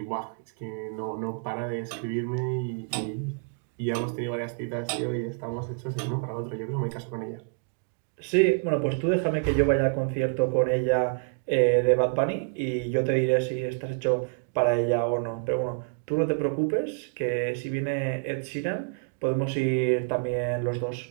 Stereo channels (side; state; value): left; quieter; 36.5 dB